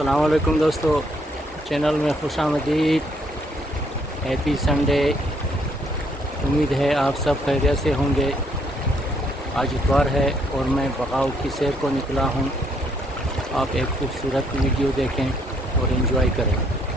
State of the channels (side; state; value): both; normal; correlation 0.69